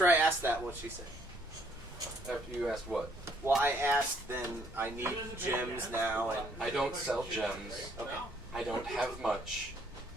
I asked that, what'd she say? After you asked what? Well, I asked then I need gems now, and I don't sell gems. okay. I don't have much.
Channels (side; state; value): both; normal; correlation 0.66